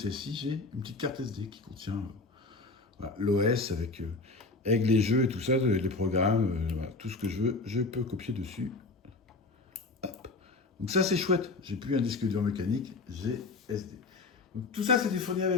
j'ai une petite carte SD qui contient voilà, l'OS avec les jeux et tout ça, les programmes, voilà, tout ce que je veux, je peux copier dessus. Hop. Donc ça, c'est chouette. J'ai plus un disque dur mécanique, j'ai SD. Donc tout ça, c'était fourni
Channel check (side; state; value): right; quieter; 3.5 dB